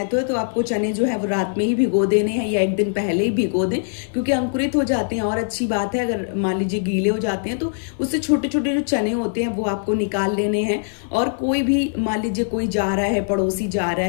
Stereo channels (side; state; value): right; silent; 64 dB below the other